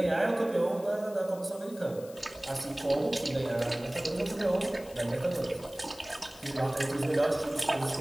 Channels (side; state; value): left; noise; hiss, 20 dB below the sound